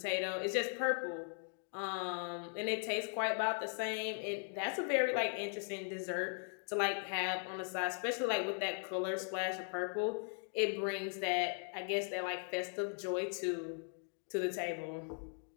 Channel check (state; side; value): silent; right; 52 dB below the other